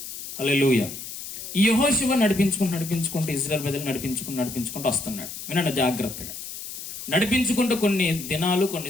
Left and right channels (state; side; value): noise; left; hiss, 9 dB below the sound